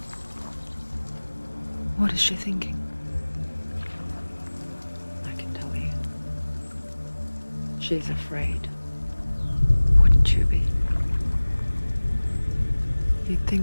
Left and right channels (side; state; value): both; inverted; correlation -1.00